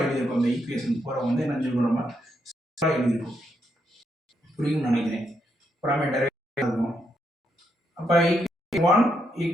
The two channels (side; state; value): both; normal; correlation 0.79